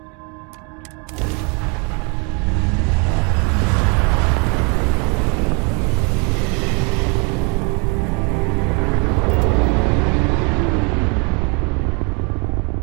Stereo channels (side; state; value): left; quieter; 33.1 dB